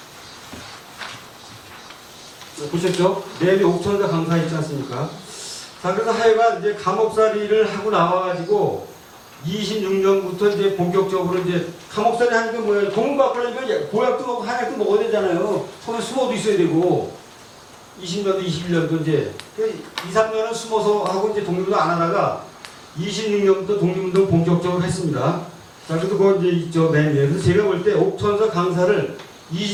보셨죠? 내일 옥천사 강사 있지 않습니까? 자, 그래서 하여간 이제 감옥살이를 하고 나와가지고 26년부터 이제 본격적으로 이제 감옥살이 하는 게 뭐야? 공문 바꾸려니까 보약도 먹고 한약도 먹어야 되잖아요. 손에 숨어도 있어야 되고. 20년도 21년도 이제 2, 3년은 숨어서 하고 이제 독립운동 안 하다가 26년부터 독립운동 본격적으로 했습니다. 자, 그래도 그거 이제 있죠, 맨 위에. 그래서 제가 볼 때 옥천사 강사를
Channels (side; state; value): both; identical; correlation 1.00